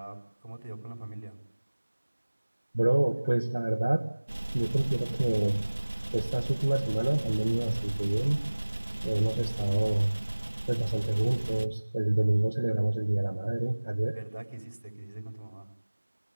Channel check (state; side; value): inverted; both; correlation -1.00